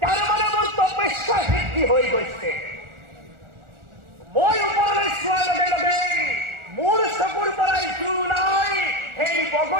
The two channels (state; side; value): late; left; 1.4 ms